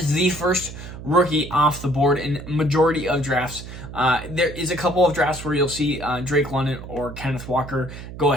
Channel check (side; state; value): right; noise; hum, 12 dB below the sound